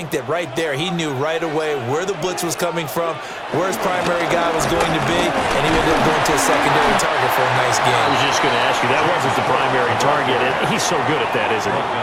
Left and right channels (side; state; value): both; identical; correlation 1.00